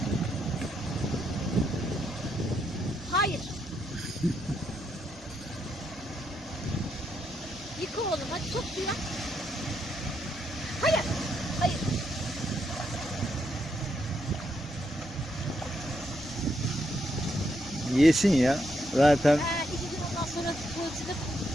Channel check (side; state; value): both; normal; correlation 0.79